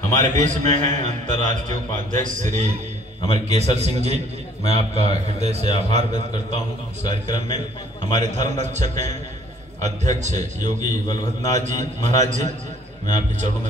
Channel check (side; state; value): both; normal; correlation 0.58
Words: हमारे बीच में हैं अंतर्राष्ट्रीय उपाध्यक्ष श्री हमारे केसर सिंह जी, मैं आपका हृदय से आभार व्यक्त करता हूं। इस कार्यक्रम में हमारे धर्म रक्षक हैं अध्यक्ष योगी बलभद्रनाथ जी महाराज जी, मैं आपके चरणों